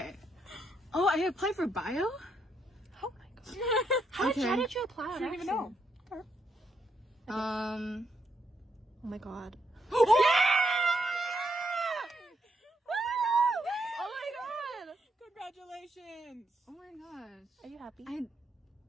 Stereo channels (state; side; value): normal; both; correlation 0.77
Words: Oh, I applied for bio? Oh my god. How did you apply? I don't even know. Oh my god. Oh my god! Congratulations! Oh my gosh. Are you happy?